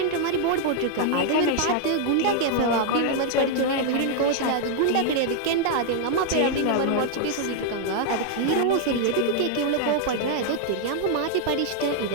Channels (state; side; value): different; both; correlation 0.00